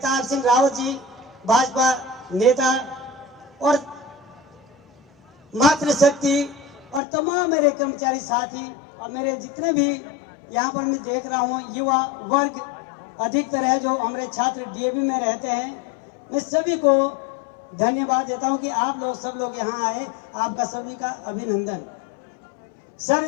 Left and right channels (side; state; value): right; drops out; at 7.0 s